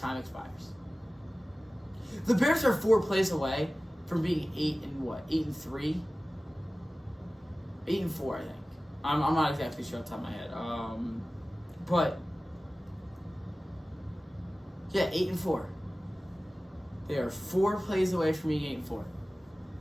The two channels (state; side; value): normal; both; correlation 0.97